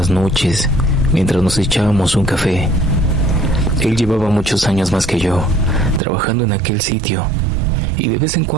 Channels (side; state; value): left; drops out; at 6.0 s